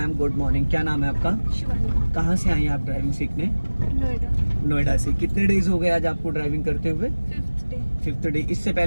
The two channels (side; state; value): both; inverted; correlation -1.00